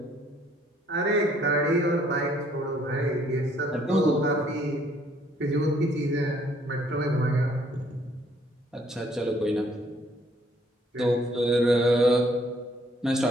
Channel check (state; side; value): normal; both; correlation 0.64